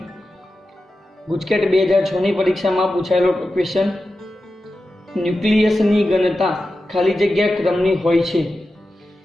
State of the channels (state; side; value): normal; both; correlation 0.92